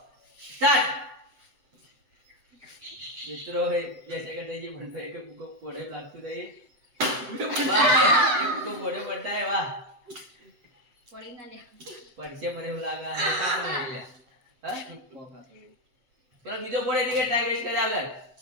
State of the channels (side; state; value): left; late; 7.8 ms